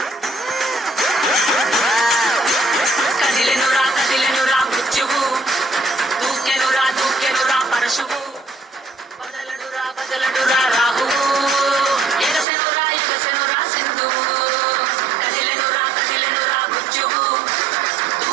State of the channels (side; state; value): left; drops out; at 12.5 s